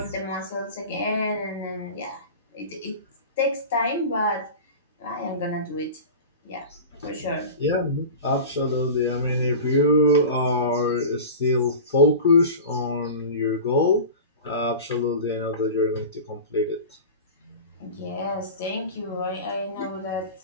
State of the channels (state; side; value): inverted; both; correlation -0.33